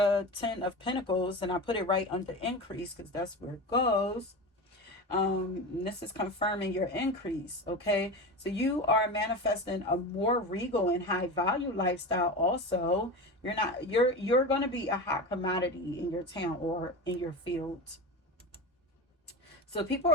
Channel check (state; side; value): normal; both; correlation 0.26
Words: 10 of Pentacles, and I put it right under increase because that's where it goes. This is confirming your increase, okay? So you are manifesting a more regal and high value lifestyle also. You're going to be a hot commodity in your town or in your field. So people